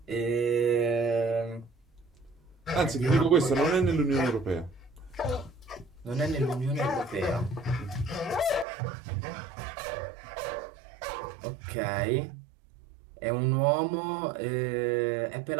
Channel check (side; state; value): left; drops out; at 8.7 s